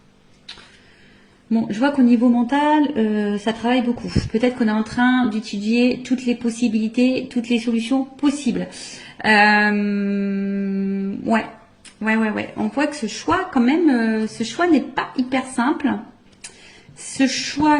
Bon, je vois qu'au niveau mental, ça travaille beaucoup. Peut-être qu'on est en train d'étudier toutes les possibilités, toutes les solutions possibles. Ouais. On voit que ce choix, quand même, ce choix n'est pas hyper simple. Ce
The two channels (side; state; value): both; identical; correlation 1.00